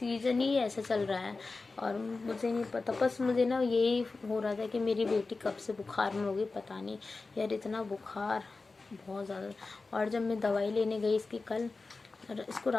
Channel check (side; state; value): right; quieter; 3.8 dB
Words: ही ऐसा चल रहा है और मुझे नहीं पता। बस मुझे ना यही हो रहा था कि मेरी बेटी कब से बुखार में होगी पता नहीं यार, इतना बुखार बहुत ज़्यादा। और जब मैं दवाई लेने गई इसकी कल, इसको